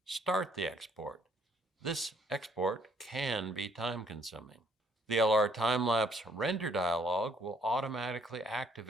Start the export. This export can be time-consuming. The LR Time-lapse Render dialog will automatically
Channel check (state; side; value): normal; both; correlation 0.65